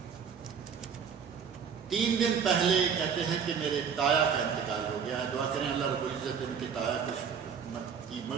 3 دن پہلے کہتے ہیں کہ میرے تایا کا انتقال ہو گیا ہے، دعا کریں اللہ رب العزت ان کے تایا کی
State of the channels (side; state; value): left; quieter; 6.9 dB